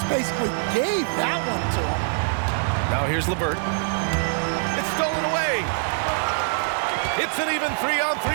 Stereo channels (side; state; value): left; silent; 63 dB below the other